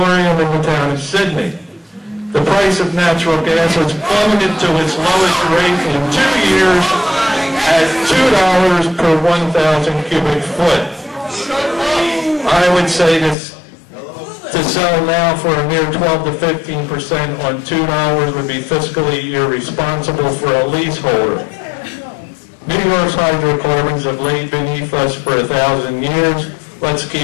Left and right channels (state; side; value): drops out; right; at 13.4 s